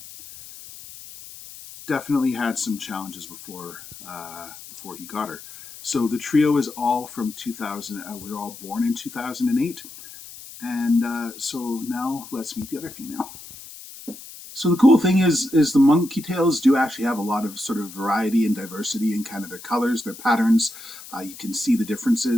had some challenges before he got her. So the trio is all from 2000. We're all born in 2008, and so now let's meet the other female. So the cool thing is the monkey tails do actually have a lot of sort of variety and diversity in kind of their colors, their patterns. You can see the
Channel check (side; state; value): left; noise; hiss, 16 dB below the sound